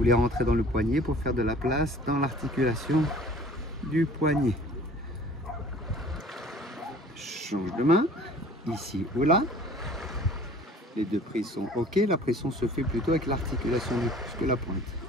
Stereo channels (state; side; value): normal; both; correlation 0.49